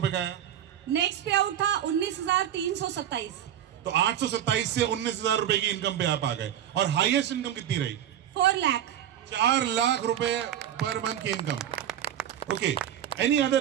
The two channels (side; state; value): left; quieter; 10.5 dB